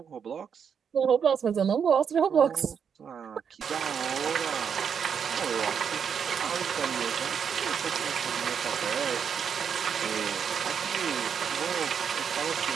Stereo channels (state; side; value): quieter; left; 7.2 dB